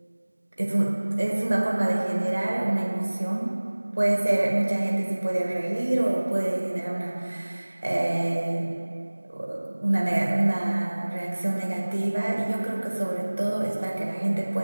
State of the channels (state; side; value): inverted; both; correlation -1.00